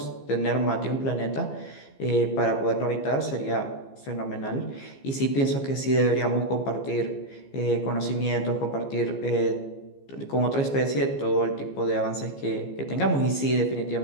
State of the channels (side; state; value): right; late; 15 ms